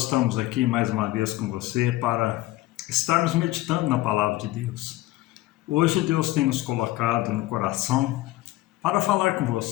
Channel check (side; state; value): right; quieter; 17.4 dB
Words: estamos aqui mais uma vez com você para estarmos meditando na palavra de Deus. Hoje Deus tem nos colocado no coração para falar com